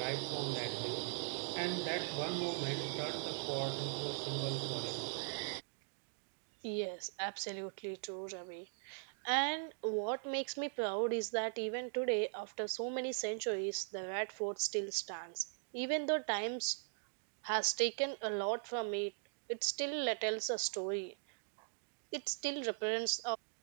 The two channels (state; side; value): silent; left; digital silence